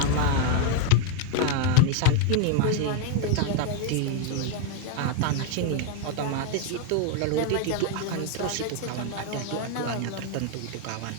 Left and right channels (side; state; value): both; different; correlation 0.01